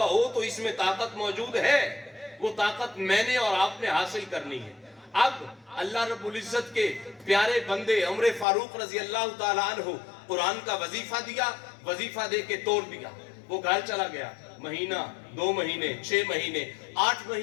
ہو تو اس میں طاقت موجود ہے. وہ طاقت میں نے اور آپ نے حاصل کرنی ہے. اب اللہ رب العزت کے پیارے بندے عمر فاروق رضی اللہ تعالیٰ عنہ قرآن کا وظیفہ دیا, وظیفہ دے کے توڑ دیا. وہ گھر چلا گیا. مہینہ, 2 مہینے, 6 مہینے, 8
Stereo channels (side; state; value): right; drops out; at 8.5 s